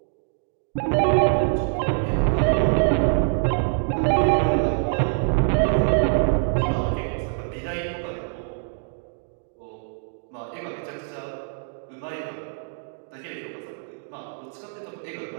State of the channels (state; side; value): silent; left; digital silence